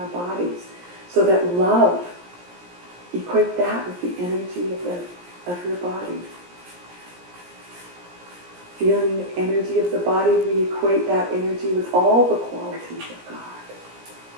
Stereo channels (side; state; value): left; late; 17 ms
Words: bodies. So that love, equate that with the energy of your body. Feeling the energy of the body, we equate that energy with all the qualities of God.